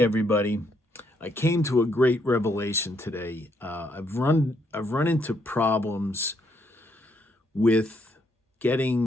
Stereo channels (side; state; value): both; normal; correlation 0.74